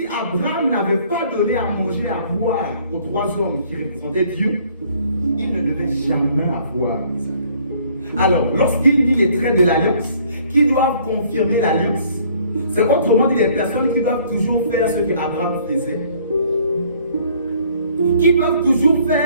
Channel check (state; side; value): inverted; both; correlation -0.59